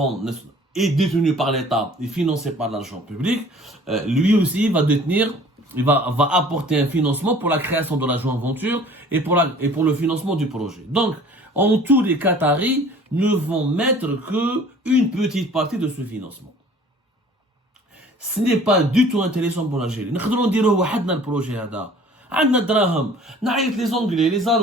est détenu par l'État et financé par l'argent public, lui aussi va apporter un financement pour la création de la joint venture et pour le financement du projet. Donc, en tout, les Qataris ne vont mettre que une petite partie de ce financement. Ce n'est pas du tout intéressant pour l'Algérie. Nous devons dire le projet là. عندنا دراهم نعيط les Anglais, les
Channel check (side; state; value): both; normal; correlation 0.50